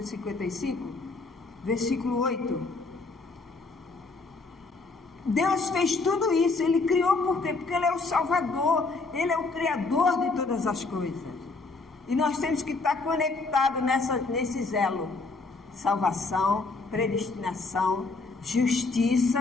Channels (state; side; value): quieter; right; 3.8 dB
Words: 55, versículo 8. Deus fez tudo isso, Ele criou por quê? Porque Ele é o Salvador, Ele é o Criador de todas as coisas. E nós temos que estar conectados nesse elo. Salvação, predestinação,